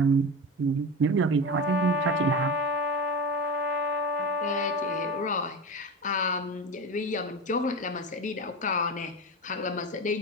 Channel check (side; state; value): both; normal; correlation 0.24